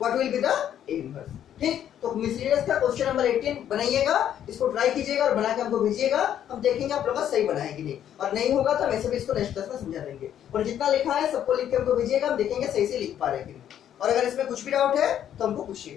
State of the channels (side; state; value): right; quieter; 10.3 dB